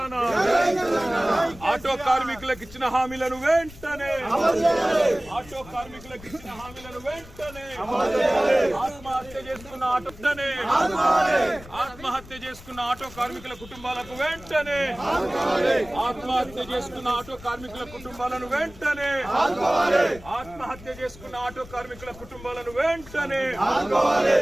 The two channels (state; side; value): noise; left; rumble, 18 dB below the sound